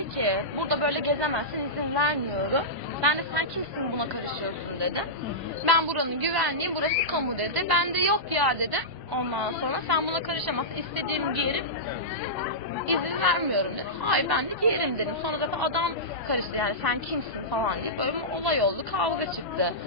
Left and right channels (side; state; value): both; normal; correlation -0.15